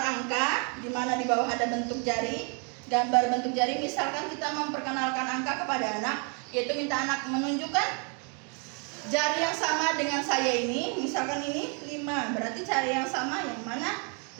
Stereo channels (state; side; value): quieter; left; 36.4 dB